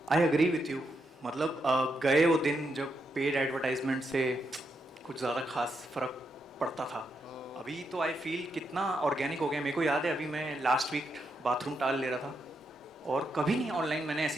I agree with you. मतलब गए वो दिन जब paid advertisement से कुछ ज़्यादा खास फर्क पड़ता था. अभी तो आई फील कितना ऑर्गेनिक हो गया. मेरे को याद है अभी मैं लास्ट वीक बाथरूम टाल ले रहा था और कभी नहीं ऑनलाइन मैंने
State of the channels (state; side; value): normal; both; correlation 0.82